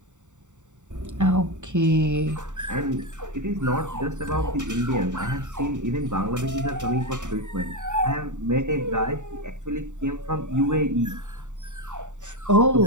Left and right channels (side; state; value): left; late; 0.85 ms